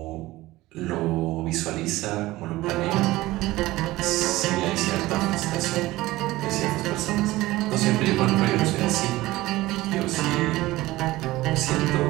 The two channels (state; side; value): quieter; left; 18.1 dB